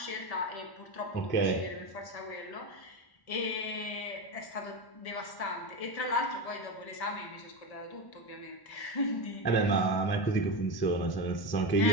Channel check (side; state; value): right; late; 1.1 ms